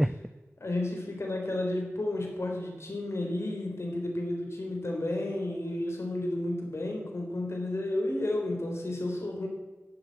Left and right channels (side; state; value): both; normal; correlation 0.94